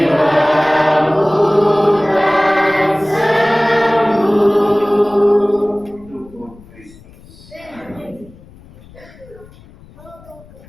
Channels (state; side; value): noise; left; rumble, 23 dB below the sound